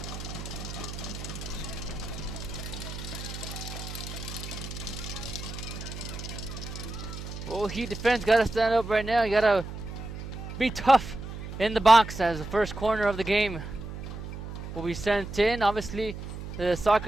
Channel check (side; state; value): right; noise; hum, 9 dB below the sound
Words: Well, Heat defense got to stand up right now. You got to be tough in the box as the first corner of the game will be sent in. Obviously, the